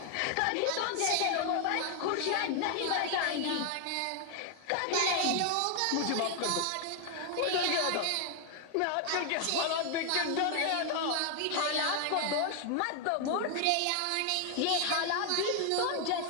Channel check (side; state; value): both; different; correlation 0.00